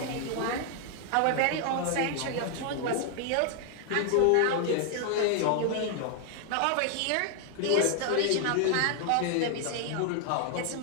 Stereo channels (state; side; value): different; both; correlation 0.00